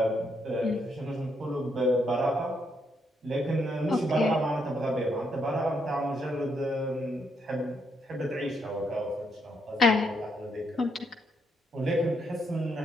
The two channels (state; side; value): normal; both; correlation 0.76